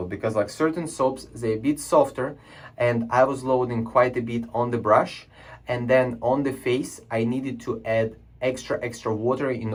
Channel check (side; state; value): both; identical; correlation 1.00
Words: because like certain soaps, they're a bit softer, and I was loading quite a bit on the brush, and then on the face I needed to add extra water